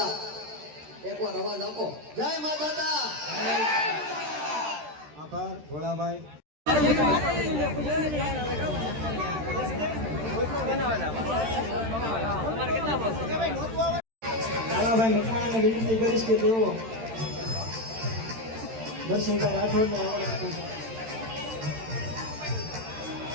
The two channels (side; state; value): left; late; 13 ms